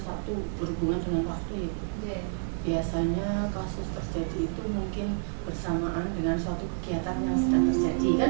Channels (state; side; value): silent; left; digital silence